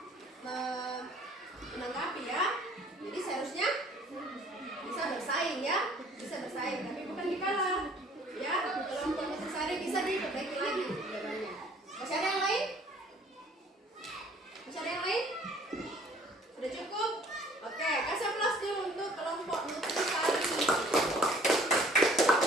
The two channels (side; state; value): both; normal; correlation 0.55